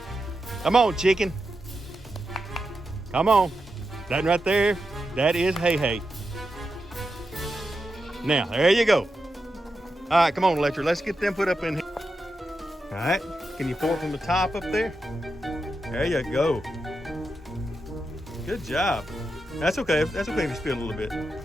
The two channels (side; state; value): both; normal; correlation 0.88